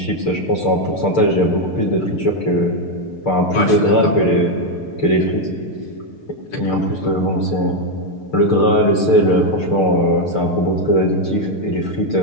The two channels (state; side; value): late; right; 6.7 ms